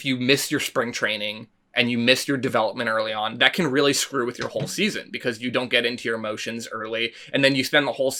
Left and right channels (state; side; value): identical; both; correlation 1.00